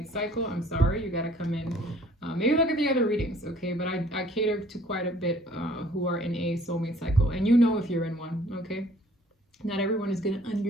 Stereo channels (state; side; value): normal; both; correlation 0.57